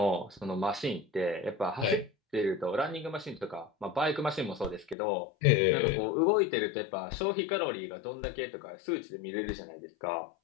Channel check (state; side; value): drops out; right; at 5.0 s